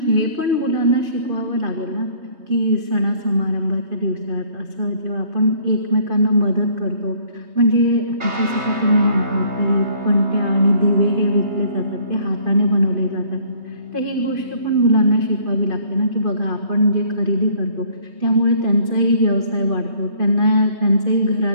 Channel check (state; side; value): late; left; 3.2 ms